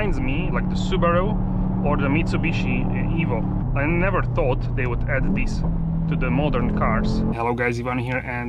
me like the Subaru or the Mitsubishi Evo. I never thought they would add this to the modern cars. Hello guys, Ivan here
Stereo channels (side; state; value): both; identical; correlation 1.00